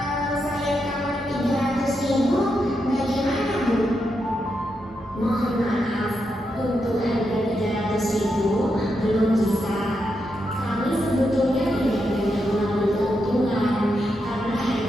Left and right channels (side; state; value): both; normal; correlation 0.84